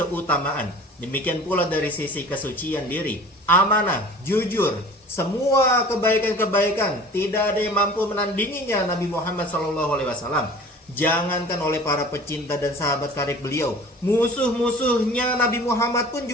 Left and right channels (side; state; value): both; normal; correlation 0.43